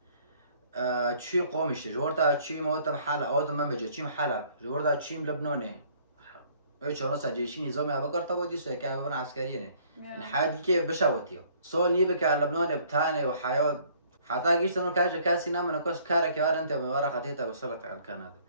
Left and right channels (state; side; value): inverted; both; correlation -0.60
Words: چی قومش جورتا چی موت حاله آدم من بجا چی حاله جورتا چی لبنانه بچورا سجیشی نظامی ابکر تا وادی سو که ببرن عسکریه نه این حادی که بشوتیو سال نیبه که لبنان بتانه و حیات حتى قلت انه كاسي نام انا كوس كارك يا انت من ورا خطيته وصلت على كندا